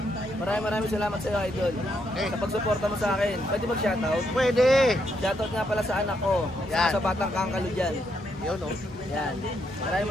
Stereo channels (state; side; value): normal; both; correlation 0.77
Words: Maraming salamat sa iyo, idol. Okay. Sa pagsuporta mo sa akin. Pwede mag-shoutout? Pwede. Shoutout nga pala sa anak ko. Yan. Sa batang kangkalo dyan. Yun oh. Yan.